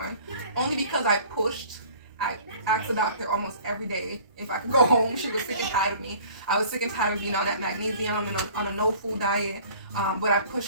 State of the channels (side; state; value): both; inverted; correlation -0.50